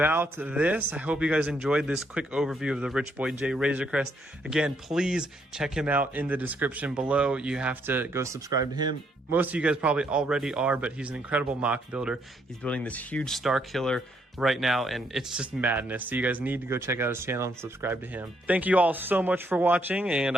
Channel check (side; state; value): both; normal; correlation 0.72